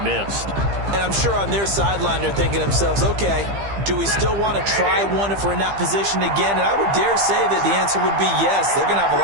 And I'm sure on their sideline they're thinking to themselves, okay, do we still want to try one if we're in that position again? And I would dare say that the answer would be yes. They're going to have a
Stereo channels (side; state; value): left; late; 15 ms